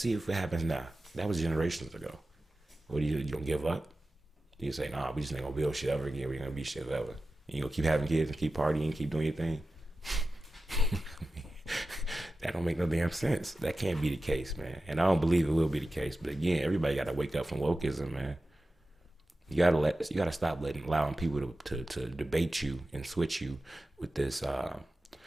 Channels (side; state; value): both; normal; correlation 0.94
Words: if it happens now. That was generations ago. What you gonna give up? You say, nah, we just ain't gonna build shit ever again. We ain't gonna be shit ever. You gonna keep having kids and keep partying, keep doing your thing? That don't make no damn sense. That can't be the case, man. And I don't believe it will be the case. But again, everybody gotta wake up from wokeism, man. You gotta stop allowing people to debate you and switch you with this